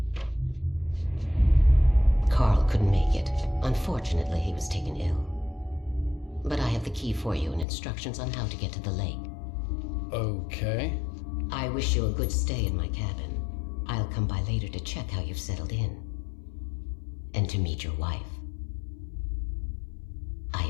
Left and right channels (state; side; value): drops out; right; at 7.7 s